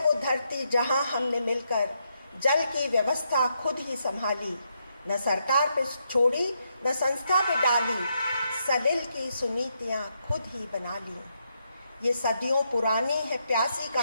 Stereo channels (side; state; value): both; inverted; correlation -0.80